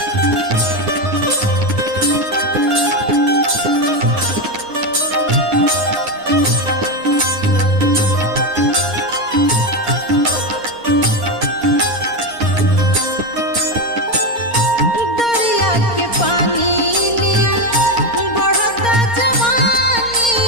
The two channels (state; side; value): late; right; 4.3 ms